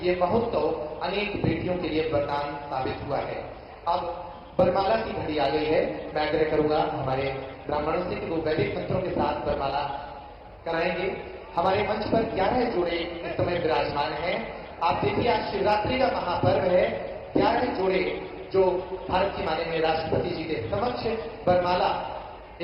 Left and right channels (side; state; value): both; identical; correlation 1.00